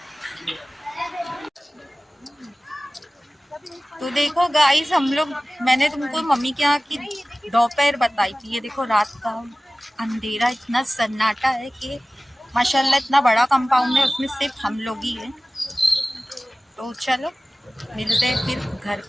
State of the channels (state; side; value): normal; both; correlation 0.97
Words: तो देखो गाइस, हम लोग, मैंने तुमको मम्मी के यहाँ की दोपहर बताई थी। ये देखो रात का अंधेरा, इतना सन्नाटा है कि माशाल्लाह इतना बड़ा कंपाउंड है, उसमें सिर्फ हम लोग ही हैं। तो चलो मिलते हैं फिर घर